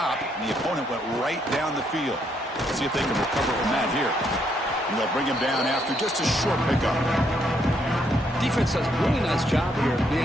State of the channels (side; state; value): both; normal; correlation 0.74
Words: and the opponent went right down the field. Let's see if they can recover from that here. And they'll bring him down after just a short pickup. Defense does a really nice job here of